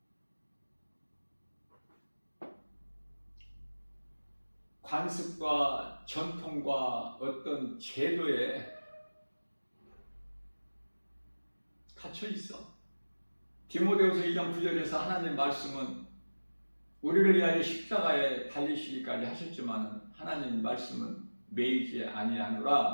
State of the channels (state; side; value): inverted; both; correlation -1.00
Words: 관습과 전통과 어떤 제도에 갇혀 있어. 디모데후서 2장 9절에서 하나님 말씀은 우리를 위하여 십자가에 달리시기까지 하셨지만 하나님 말씀은 매이지 아니하노라